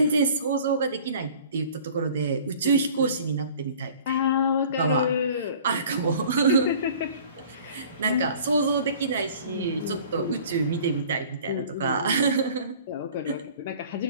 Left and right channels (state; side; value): inverted; both; correlation -0.48